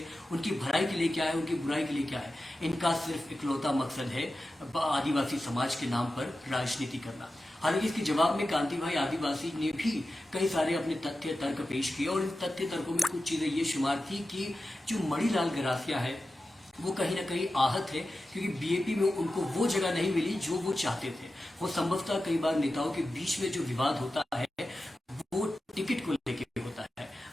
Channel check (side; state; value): both; normal; correlation 0.93